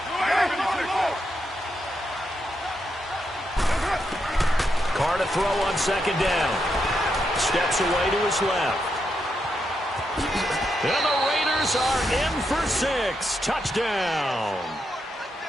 Carr to throw on 2nd down. Steps away to his left. And the Raiders are in for 6. Touchdown.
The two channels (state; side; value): normal; both; correlation 0.82